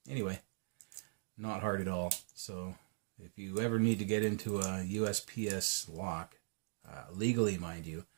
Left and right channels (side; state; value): left; silent; digital silence